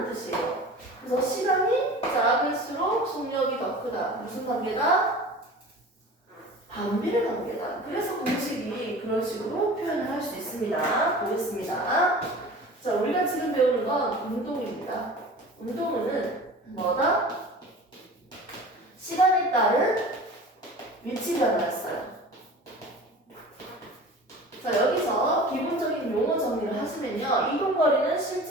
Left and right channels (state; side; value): normal; both; correlation 0.39